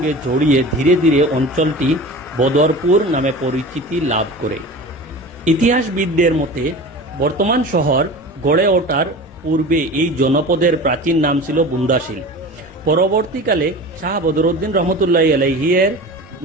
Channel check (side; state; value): both; normal; correlation 0.35